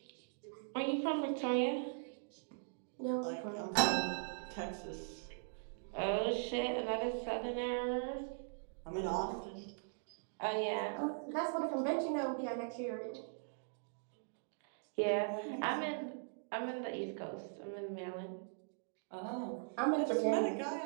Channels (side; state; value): left; silent; digital silence